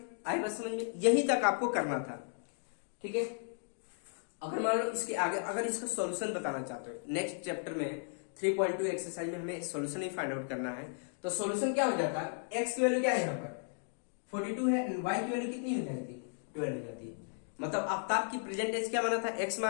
आई बात समझ में? यहीं तक आपको करना था, ठीक है। अगर मान लो इसके आगे अगर इसका सॉल्यूशन बताना चाहते हो, नेक्स्ट चैप्टर में 3.2 एक्सरसाइज में हमें सॉल्यूशन ही फाइंड आउट करना है। तो सॉल्यूशन क्या हो जाता है, x की वैल्यू क्या है यहाँ पर 42 है, y की वैल्यू कितनी हो जाती है 12 हो जाती है। मतलब आफ्ताब की प्रेजेंट एज क्या माना था x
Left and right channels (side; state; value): right; silent; digital silence